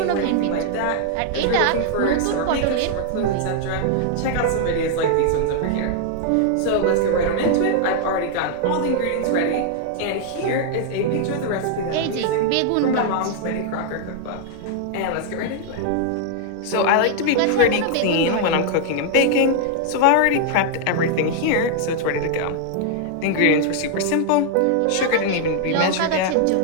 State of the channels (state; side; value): different; both; correlation 0.00